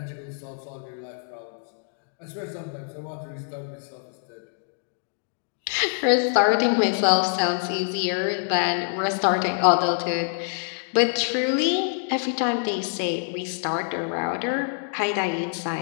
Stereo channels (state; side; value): silent; right; digital silence